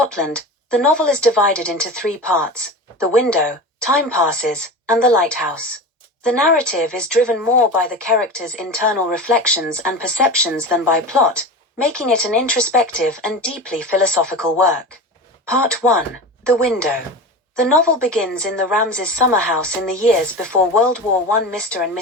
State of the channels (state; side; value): normal; both; correlation 0.29